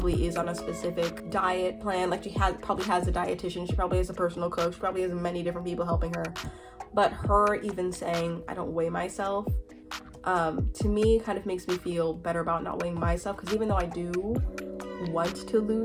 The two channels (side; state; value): both; identical; correlation 1.00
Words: is on a specific diet plan. Like probably has a dietitian. She probably has a personal coach. She probably has many different people helping her. But her even saying I don't weigh myself, to me kind of makes me feel better about not weighing myself, because even though I do want to